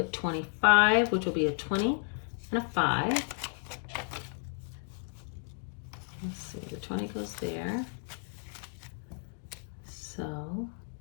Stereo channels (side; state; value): right; silent; 56 dB below the other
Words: 25, which will be a 20 and a 5. Let's see, the 20 goes there. So